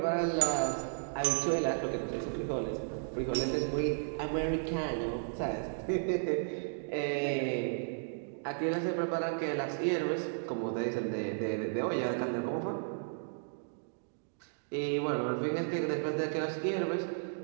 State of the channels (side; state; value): left; silent; digital silence